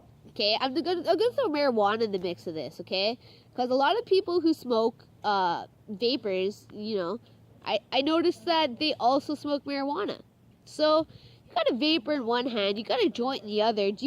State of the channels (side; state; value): both; identical; correlation 1.00